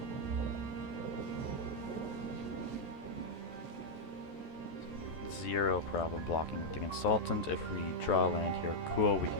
Zero problem blocking with the consultant. If we draw land here, cool, we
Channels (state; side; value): late; right; 13 ms